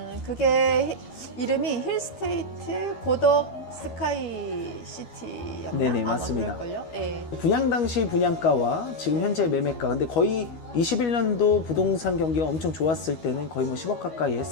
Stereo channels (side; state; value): right; late; 12 ms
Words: 그게 이름이 힐스테이트 고덕 스카이시티였나? 네네, 맞습니다. 그럴걸요? 네. 분양 당시 분양가와 지금 현재 매매가 근데 거의 21년도 부동산 경기가 엄청 좋았을 때는 거의 뭐 10억 가까이